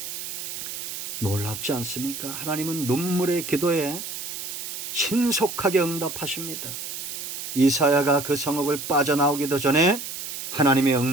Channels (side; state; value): right; noise; hiss, 7 dB below the sound